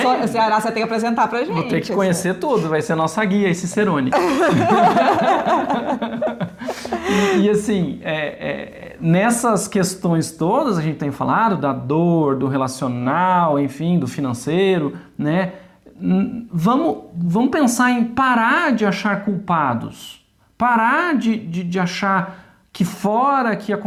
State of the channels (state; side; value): identical; both; correlation 1.00